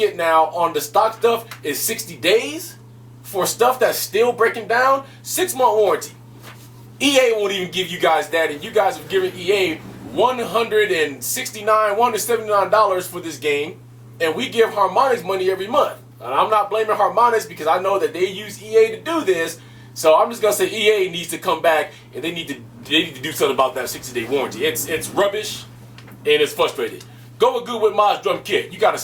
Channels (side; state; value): both; identical; correlation 1.00